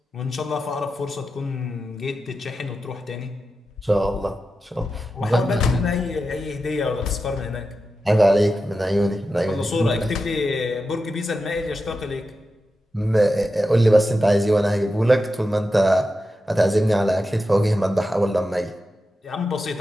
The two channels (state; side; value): normal; both; correlation 0.90